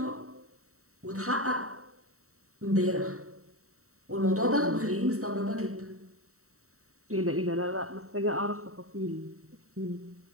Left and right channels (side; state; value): left; late; 0.64 ms